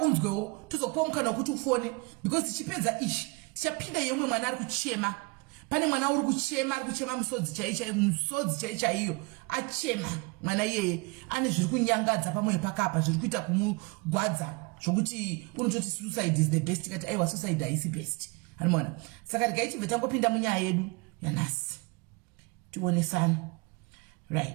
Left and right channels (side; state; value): left; quieter; 28.0 dB